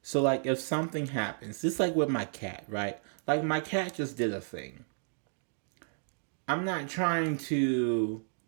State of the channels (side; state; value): left; silent; digital silence